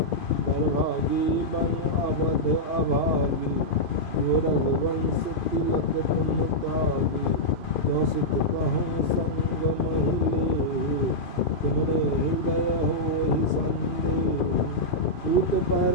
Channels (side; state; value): right; late; 2.5 ms